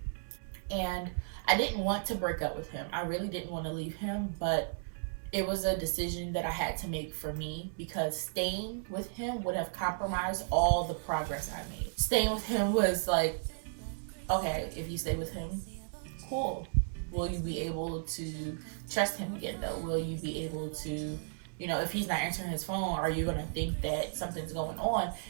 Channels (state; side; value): silent; left; 55 dB below the other